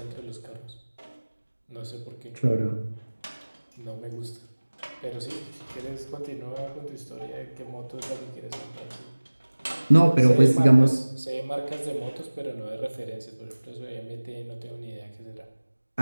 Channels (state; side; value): inverted; both; correlation -1.00